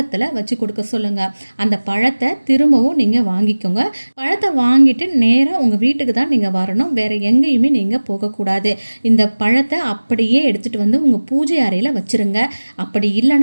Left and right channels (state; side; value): inverted; both; correlation -1.00